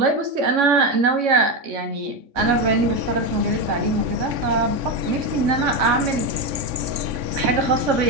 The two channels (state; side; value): late; left; 3.6 ms